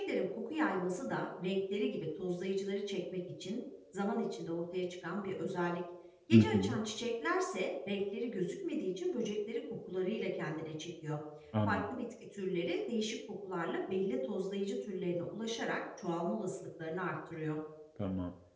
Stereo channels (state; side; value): identical; both; correlation 1.00